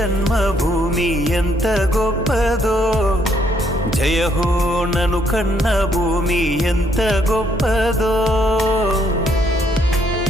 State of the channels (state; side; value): normal; both; correlation 0.70